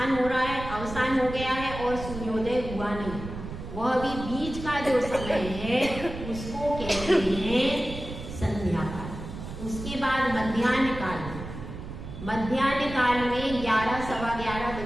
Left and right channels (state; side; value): noise; right; rumble, 10 dB below the sound